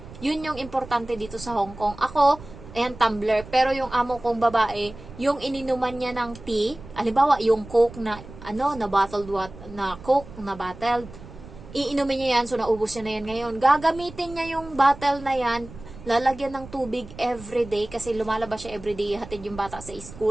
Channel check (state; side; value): noise; right; rumble, 16 dB below the sound